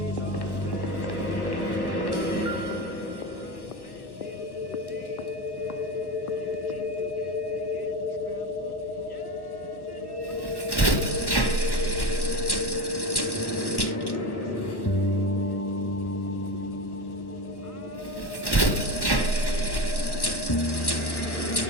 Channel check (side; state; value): right; late; 1.1 ms